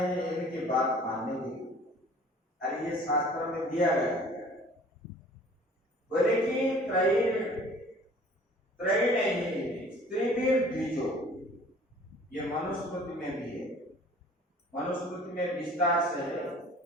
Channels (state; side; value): normal; both; correlation 0.50